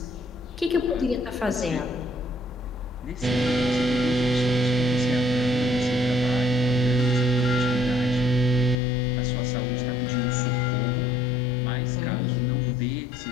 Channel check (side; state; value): right; drops out; at 8.8 s